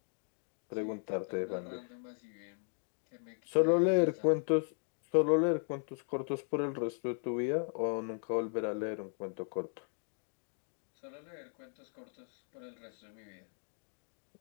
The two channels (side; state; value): right; silent; 53 dB below the other